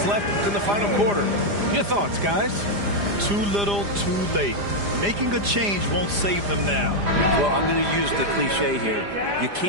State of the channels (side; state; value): left; late; 4.9 ms